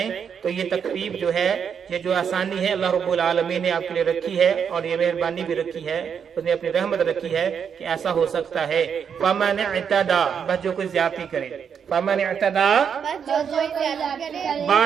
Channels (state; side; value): quieter; left; 7.3 dB